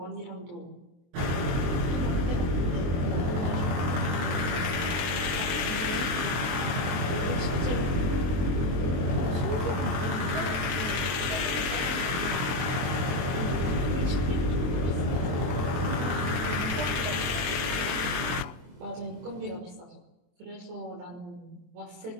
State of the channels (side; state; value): left; late; 23 ms